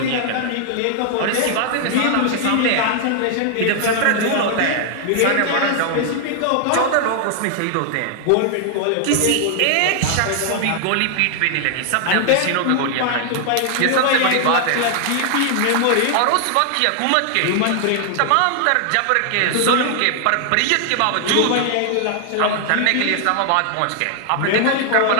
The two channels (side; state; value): both; different; correlation 0.00